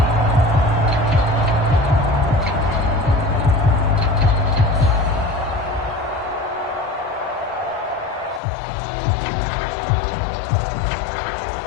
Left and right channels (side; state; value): right; drops out; at 8.4 s